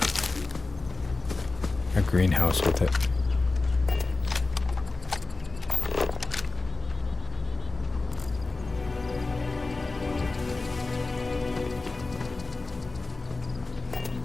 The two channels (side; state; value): right; quieter; 3.5 dB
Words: a greenhouse with it.